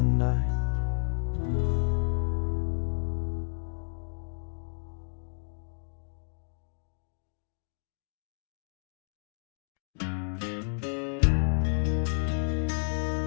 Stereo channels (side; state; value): right; silent; digital silence